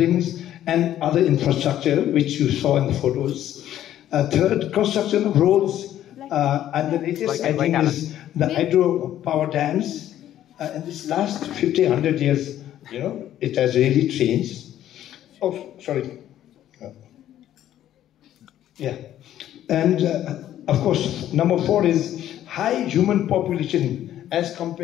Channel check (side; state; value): right; quieter; 12.0 dB